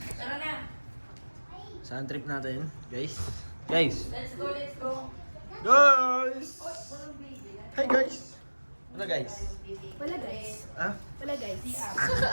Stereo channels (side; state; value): both; inverted; correlation -1.00